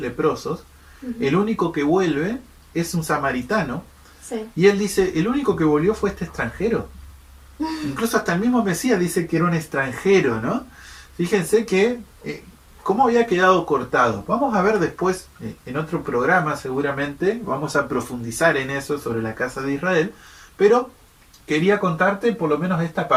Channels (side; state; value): both; identical; correlation 1.00